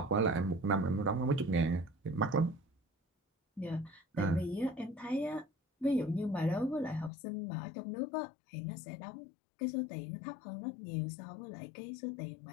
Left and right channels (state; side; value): drops out; right; at 7.1 s